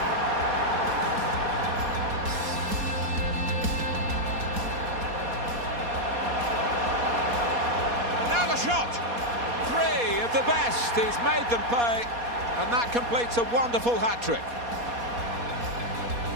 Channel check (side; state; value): left; late; 4.2 ms